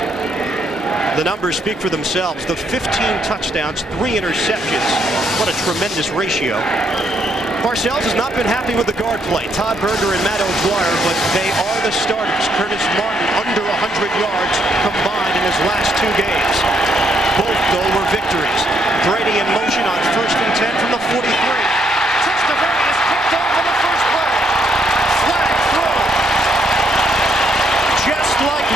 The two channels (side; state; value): both; normal; correlation 0.73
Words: The numbers speak for themselves. The 15 touchdowns, 3 interceptions. What a tremendous ratio. Parcells has not been happy with the guard play. Todd Berger and Matt O'Dwyer, but they are the starters. Curtis Martin under 100 yards combined in his last 2 games. Both, though, were victories. Brady in motion on 1st and 10 from the 43. Testaverde is picked off on the first play. Flag throw. Just like